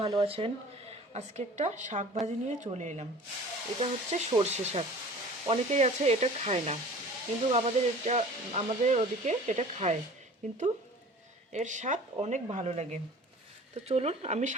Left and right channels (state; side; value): normal; both; correlation 0.44